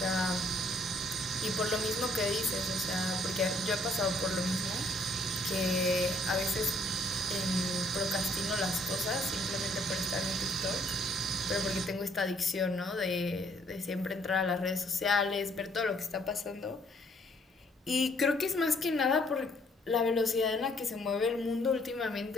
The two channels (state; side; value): normal; both; correlation 0.65